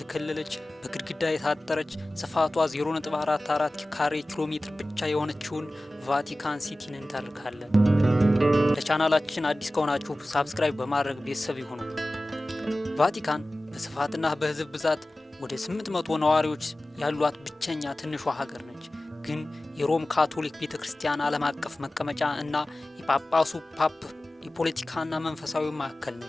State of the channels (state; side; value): normal; both; correlation 0.96